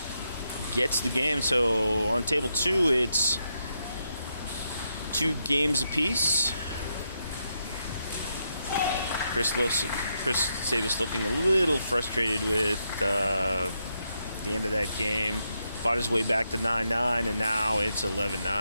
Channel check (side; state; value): both; inverted; correlation -0.81